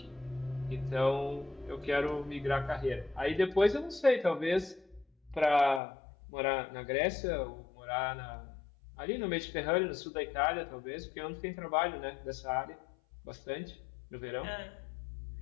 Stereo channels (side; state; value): right; drops out; at 5.8 s